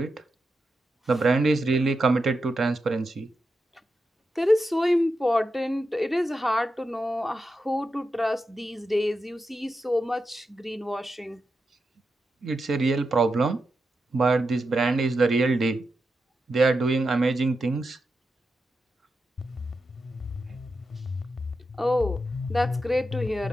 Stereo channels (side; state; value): both; normal; correlation 0.88